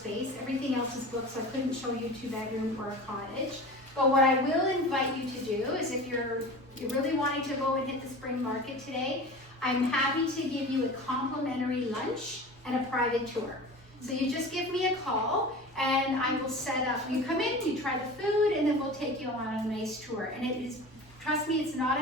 Everything else is booked, so I couldn't show you 2-bedroom or a cottage. But what I will invite you to do is if you're really wanting to go and hit the spring market today, I'm happy to give you a complimentary lunch and a private tour. So you just give me a call and I will set up, you come in, you try the food, and then we'll take you on a nice tour. And it is, trust me, it's not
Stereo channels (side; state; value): both; normal; correlation 0.35